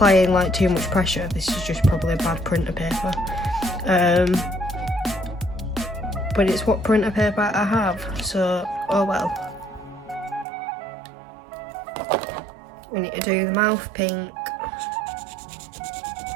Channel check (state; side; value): drops out; left; at 10.5 s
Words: like too much pressure. This is just probably a bad printer paper, but it's what printer paper I have, so oh well. We need to do the mouth pink